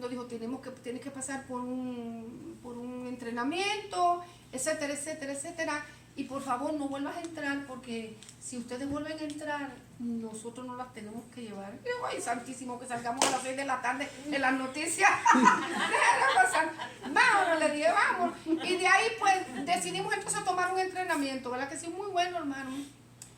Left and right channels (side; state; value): both; identical; correlation 1.00